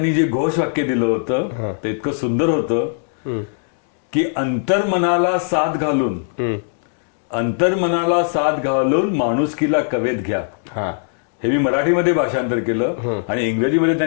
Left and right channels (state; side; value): silent; right; digital silence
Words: जे घोषवाक्य दिलं होतं ते इतकं सुंदर होतं की अंतर्मनाला साथ घालून माणुसकीला कवेत घ्या. हे मी मराठीमध्ये भाषांतर केलं. आणि इंग्रजीमध्ये